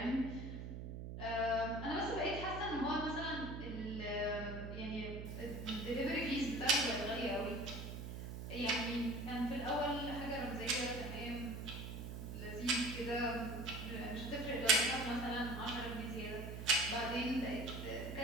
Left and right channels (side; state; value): right; noise; hum, 7 dB below the sound